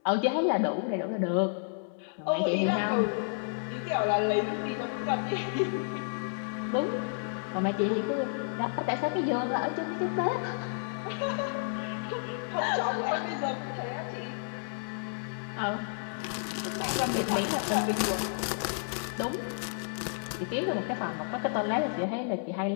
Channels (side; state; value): right; silent; 57 dB below the other